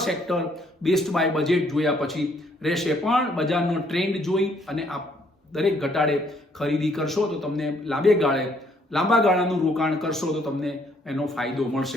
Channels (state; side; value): normal; both; correlation 0.67